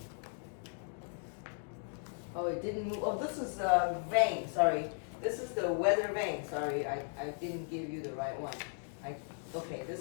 Oh, it didn't move. Oh, this is the vane, sorry. This is the weather vane, sorry. I didn't give you the right one. Okay,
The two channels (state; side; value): silent; right; 53 dB below the other